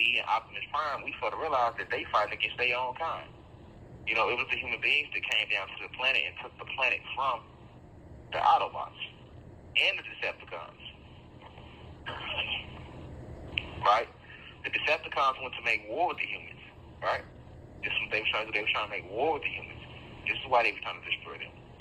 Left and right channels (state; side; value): identical; both; correlation 1.00